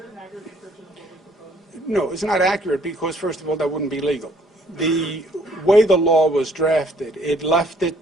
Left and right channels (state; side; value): normal; both; correlation 0.62